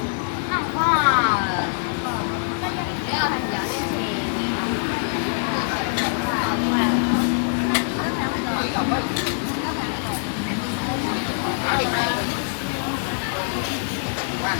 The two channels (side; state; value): right; silent; digital silence